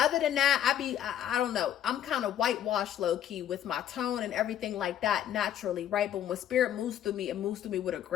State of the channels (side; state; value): right; quieter; 10.6 dB